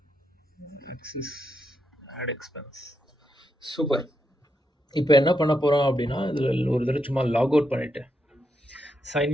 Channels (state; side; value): normal; both; correlation 0.82